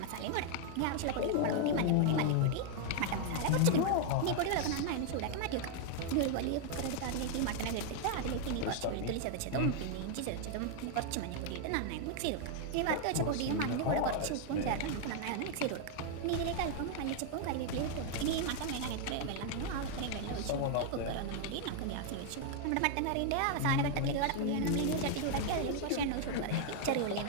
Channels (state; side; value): different; both; correlation 0.00